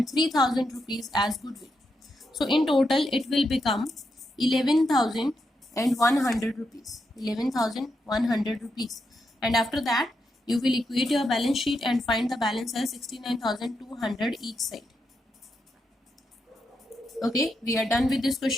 3,000 rupees as goodwill. So in total it will become 11,100 rupees. 11,100 rupees. And after that you will equate your balance sheet and find the balance as 69,200 each side. Okay, we are done with this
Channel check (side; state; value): both; normal; correlation 0.84